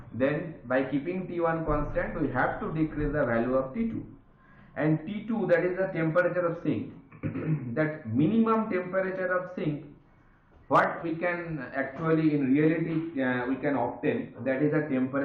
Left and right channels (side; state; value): both; identical; correlation 1.00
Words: then by keeping T1 constant, we have to decrease the value of T2. And T2, that is the temperature of sink. That minimum temperature of sink, what we can actually in reality we can obtain, that is the